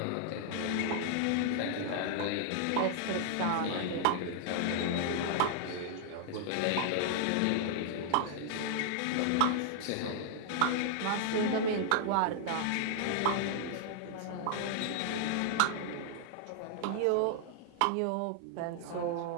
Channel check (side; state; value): both; different; correlation 0.00